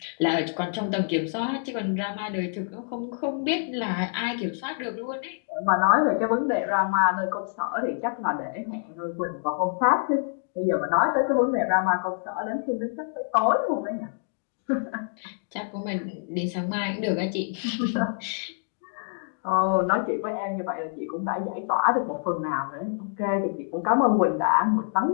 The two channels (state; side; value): silent; right; digital silence